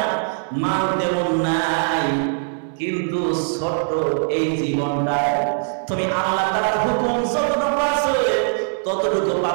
মাল তেমন নাই, কিন্তু ছোট্ট এই জীবনটায় তুমি আল্লাহ তাআলার হুকুম যতটুকু আছে ততটুকু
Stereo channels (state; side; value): silent; left; 61 dB below the other